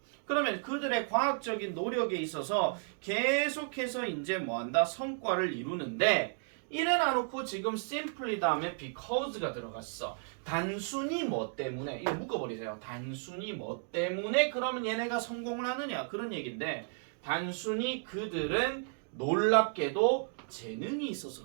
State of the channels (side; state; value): left; silent; 55 dB below the other